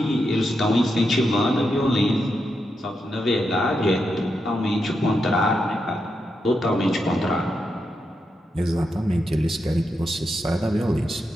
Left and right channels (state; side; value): normal; both; correlation 0.85